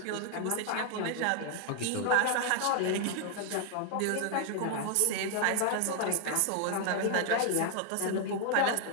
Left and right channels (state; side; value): different; both; correlation 0.00